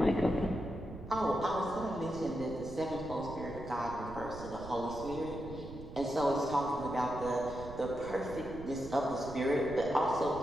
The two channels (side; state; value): right; noise; rumble, 12 dB below the sound